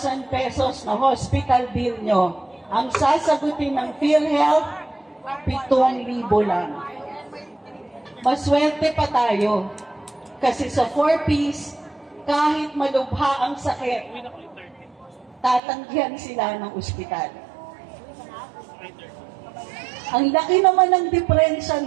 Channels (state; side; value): drops out; left; at 15.6 s